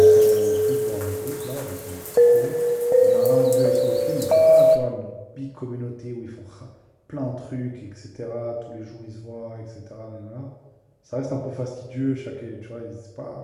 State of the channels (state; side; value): identical; both; correlation 1.00